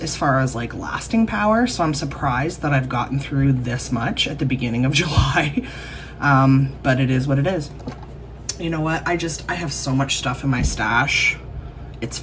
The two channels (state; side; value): identical; both; correlation 1.00